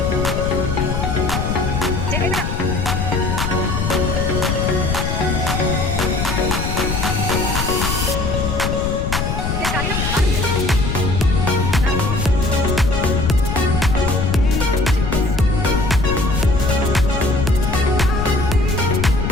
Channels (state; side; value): noise; left; rumble, 1 dB below the sound